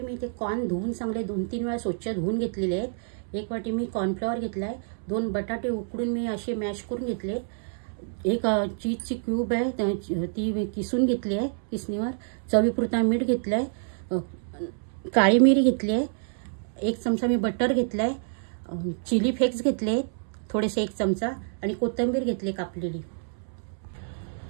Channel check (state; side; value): silent; left; 60 dB below the other